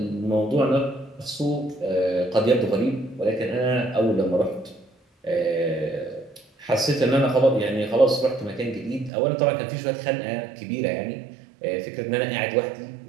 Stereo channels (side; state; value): left; drops out; at 9.1 s